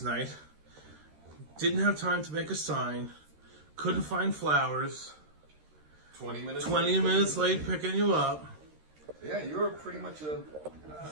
night. Didn't have time to make a sign. Couldn't find flowers. 20 minutes. 20 minutes late picking you up. Yeah, you were pretty much a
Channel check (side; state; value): left; late; 13 ms